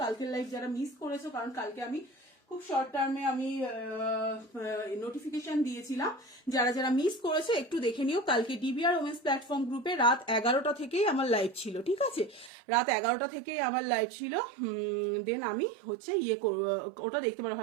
কালকের লাইভ যারা মিস করেছো, কারণ কালকে আমি খুব শর্ট টার্মে আমি নোটিফিকেশন দিয়েছিলাম, যারা যারা মিস করেছে একটু দেখে নিও। কালকে ডিবিআর ওমেন্স প্ল্যাটফর্ম গ্রুপে রাত 11টা থেকেই আমার লাইভ ছিল, ঠিক আছে, রাত 11টা থেকেই আমার লাইভ ছিল। দেন আমি হচ্ছে ওটা দেখতে পারো।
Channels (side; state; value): left; drops out; at 12.5 s